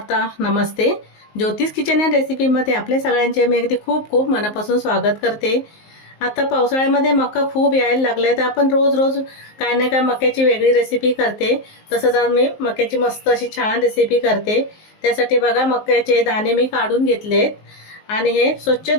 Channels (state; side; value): late; right; 19 ms